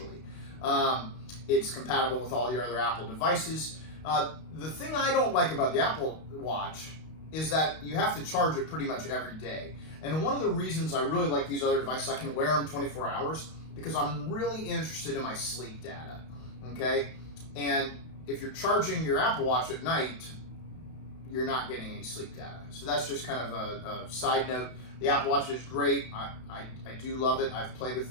It's compatible with all your other Apple devices. The thing I don't like about the Apple Watch is that you have to charge it pretty much every day. And one of the reasons I really like these other devices, I can wear them 24 hours because I'm really interested in my sleep data, okay? And if you're charging your Apple Watch at night, you're not getting any sleep data. So that's just kind of a side note. The Apple Watch is great. I do love it. I've played with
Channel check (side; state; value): right; late; 32 ms